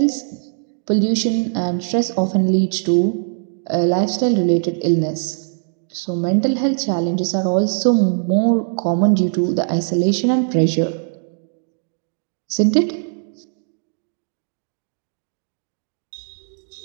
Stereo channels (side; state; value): left; silent; digital silence